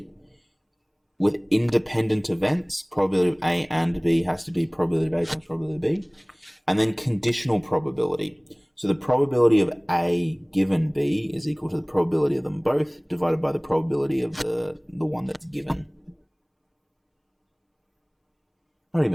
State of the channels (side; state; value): both; identical; correlation 1.00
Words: With independent events, probability of A and B has to be probability of A times probability of B. And then conditional probability. So the probability of A given B is equal to the probability of them both divided by the probability of the one that's given. Not